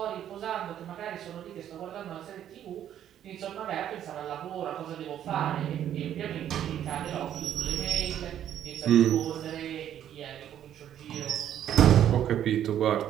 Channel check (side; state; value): left; quieter; 10.6 dB